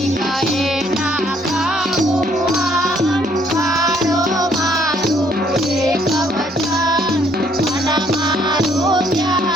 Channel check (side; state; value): both; normal; correlation 0.66